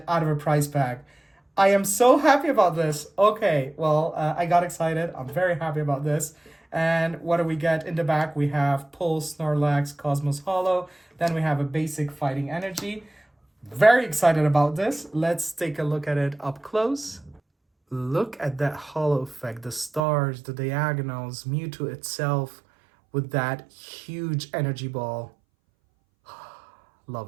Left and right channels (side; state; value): left; drops out; at 20.0 s